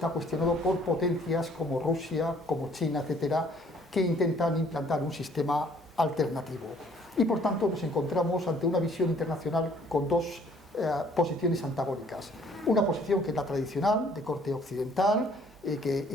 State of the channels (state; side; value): normal; both; correlation 0.60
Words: cuestionado por potencias como Rusia, como China, etcétera, que intentan implantar un sistema alternativo. Y por tanto nos encontramos ante una visión internacional con dos posiciones antagónicas. Una posición que es la tradicional, de corte occidental, que